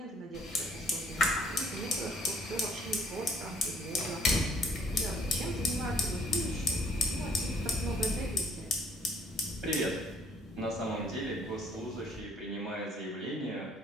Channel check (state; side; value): normal; both; correlation 0.60